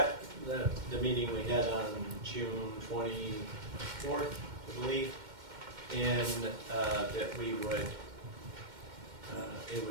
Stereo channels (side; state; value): left; late; 2.1 ms